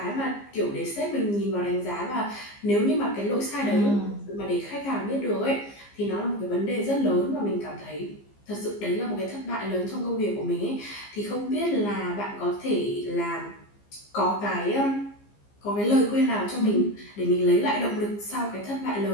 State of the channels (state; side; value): late; right; 15 ms